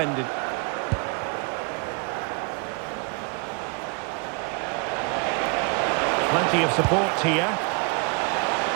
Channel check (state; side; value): quieter; left; 31.8 dB